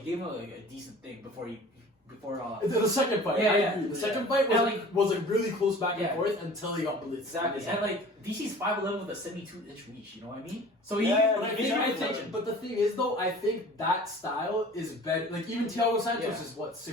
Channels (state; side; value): normal; both; correlation 0.44